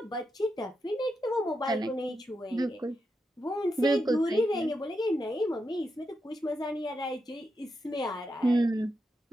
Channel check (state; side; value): normal; both; correlation 0.86